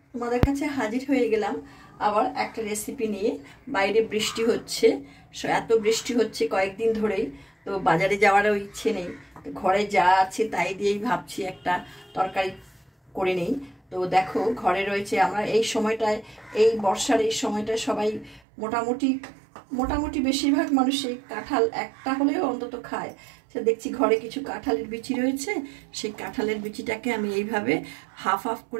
তোমাদের কাছে হাজির হয়ে গেলাম আবার একটা রেসিপি নিয়ে। বাইরে বৃষ্টি হচ্ছে, এত বৃষ্টি হচ্ছে কয়েকদিন ধরেই, তো বাজারে যাওয়ারও ইচ্ছে নেই। তো ঘরে যা আছে তাই দিয়েই ভাবছি একটা তরকারি করে নেই। তো দেখো, ঘরে রয়েছে, আমরা এই সময়টায়, এই বর্ষার এই সময়টায় সবাই মোটামুটি বেশিরভাগ মানুষই কাঁঠাল একটা হলেও অন্তত খায়। সে দেখছি ঘরে কিছু কাঁঠালের বিচি রয়েছে, সেই কাঁঠালের বিচিটাকে আমি এইভাবে হাফ হাফ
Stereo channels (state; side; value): drops out; left; at 18.4 s